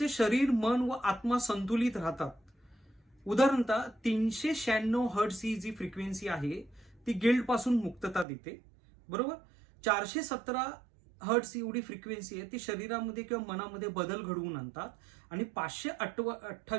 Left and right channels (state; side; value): drops out; left; at 8.2 s